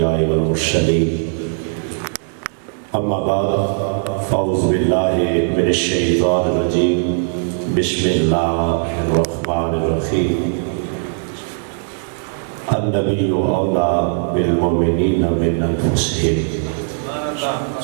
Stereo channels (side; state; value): left; silent; digital silence